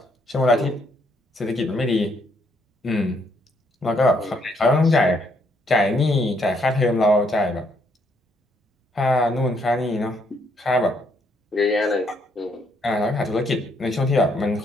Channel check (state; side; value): normal; both; correlation 0.71